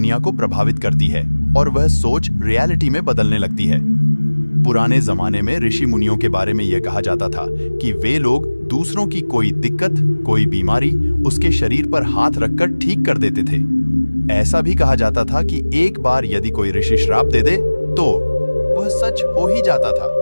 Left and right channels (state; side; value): inverted; both; correlation -1.00